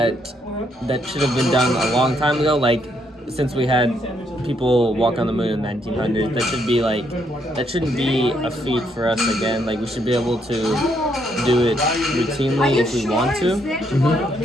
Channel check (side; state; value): both; normal; correlation 0.74